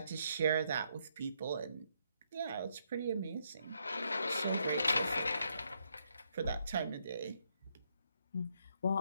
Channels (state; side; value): inverted; both; correlation -0.76